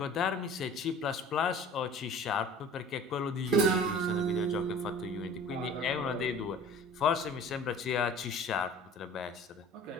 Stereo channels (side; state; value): both; normal; correlation 0.44